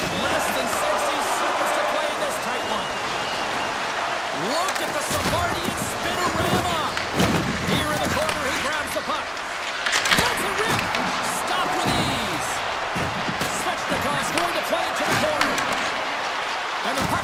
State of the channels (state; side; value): identical; both; correlation 1.00